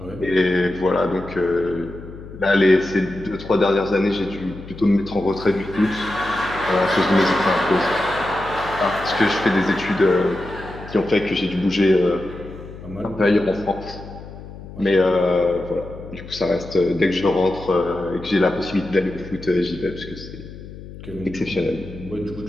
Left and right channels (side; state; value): left; noise; hum, 14 dB below the sound